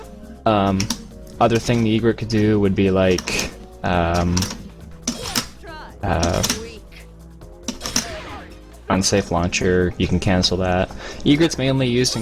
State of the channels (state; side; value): identical; both; correlation 1.00